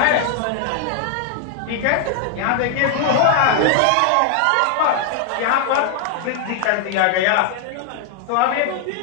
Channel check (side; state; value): both; different; correlation 0.00